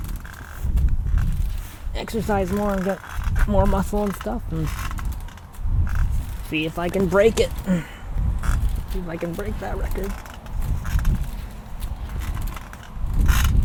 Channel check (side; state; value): both; identical; correlation 1.00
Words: exercise more and get more muscle and stuff, and see if I can break it. See if I can break that record.